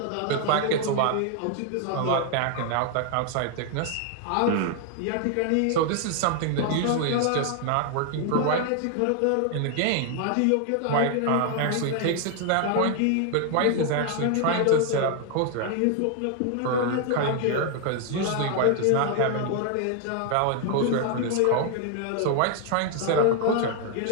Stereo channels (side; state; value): both; different; correlation 0.00